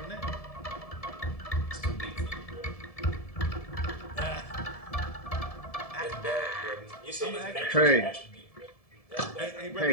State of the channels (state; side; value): late; right; 1.7 ms